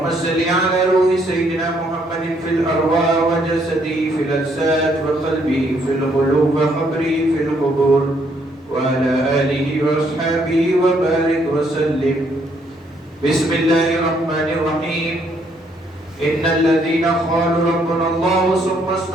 صل على روح سيدنا محمد في الأرواح وجسده في الأجساد وقلبه في القلوب وقبره في القبور وعلى آله وأصحابه وبارك وسلم. بسم الله الرحمن الرحيم. إن الذين قالوا ربنا الله ثم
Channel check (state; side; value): normal; both; correlation 0.70